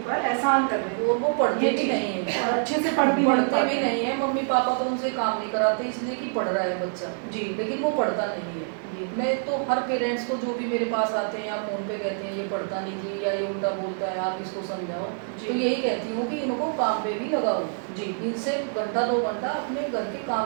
एहसान कर रहे हैं और वो पढ़ते ये भी चीज़। नहीं है और अच्छे से पढ़ भी नहीं पढ़ते पाते। भी नहीं है मम्मी पापा तो उनसे काम नहीं कराते इसलिए कि पढ़ रहा है बच्चा जी लेकिन वो पढ़ता नहीं है जी मैं तो हर पेरेंट्स को जो भी मेरे पास आते हैं या फ़ोन पे कहते हैं ये पढ़ता नहीं जी या ये उल्टा बोलता है आप इसको समझाओ जी। तो यही कहती हूँ कि इनको काम पे भी लगाओ जी इनसे घंटा 2 घंटा अपने घर के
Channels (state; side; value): silent; left; 61 dB below the other